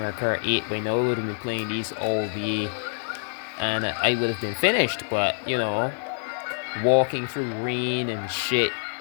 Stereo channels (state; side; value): silent; right; digital silence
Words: Kart 8 by now. I would have been playing these all day and I would have been finished, but you know, walking through rain and shit.